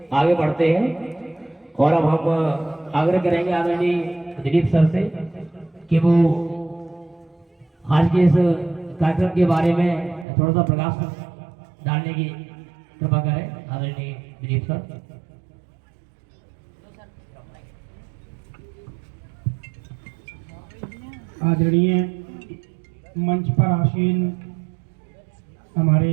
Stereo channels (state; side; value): drops out; left; at 10.2 s